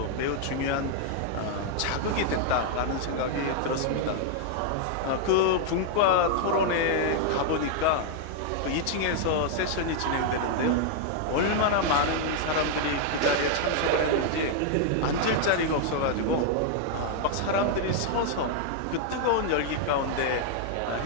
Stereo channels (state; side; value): different; both; correlation 0.00